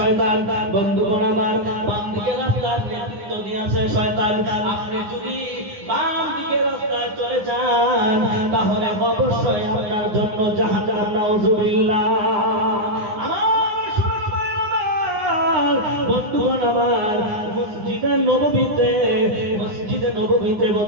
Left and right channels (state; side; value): late; left; 9.7 ms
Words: বন্ধুগণ আমার, বাম দিকে রাস্তার নেতৃত্ব দিয়েছে শয়তান। আপনি যদি বাম দিকে রাস্তায় চলে যান তাহলে অবশ্যই আপনার জন্য জাহান্নাম, নাউযুবিল্লাহ। বন্ধুগণ আমার, মসজিদে নববীতে